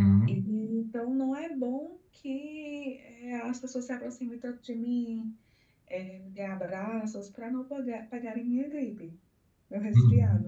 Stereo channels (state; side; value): identical; both; correlation 1.00